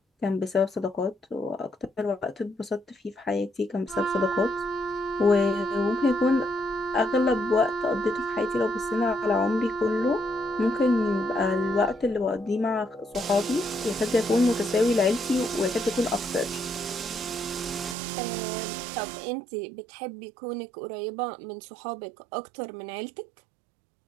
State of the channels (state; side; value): drops out; left; at 17.9 s